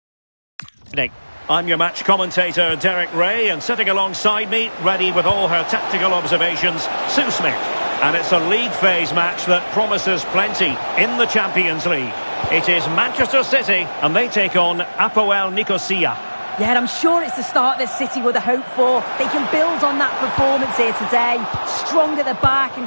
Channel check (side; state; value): both; inverted; correlation -1.00